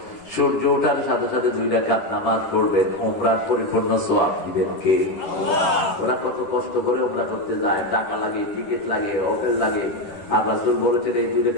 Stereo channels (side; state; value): right; late; 10 ms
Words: সূর্য ওঠার সাথে সাথে 2 রাকাত নামাজ পড়বেন, উমরার পরিপূর্ণ সওয়াব দিবেন কে? ওরা কত কষ্ট করে উমরা করতে যায়, টাকা লাগে, টিকিট লাগে, হোটেল লাগে, আর রাসূল বলেছেন এই 2